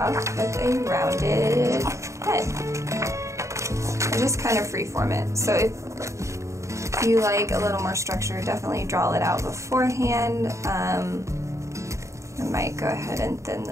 with a rounded head. And just kind of freeform it. So if you like a little more structure, definitely draw it out beforehand. I might go ahead and thin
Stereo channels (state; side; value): late; left; 0.14 ms